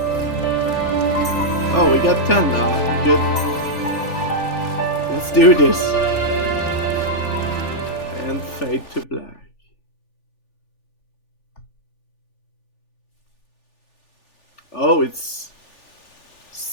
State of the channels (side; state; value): right; late; 3.4 ms